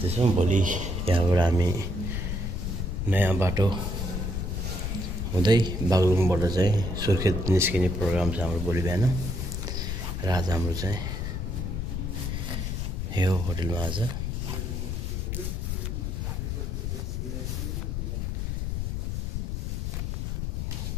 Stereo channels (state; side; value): noise; left; rumble, 2 dB below the sound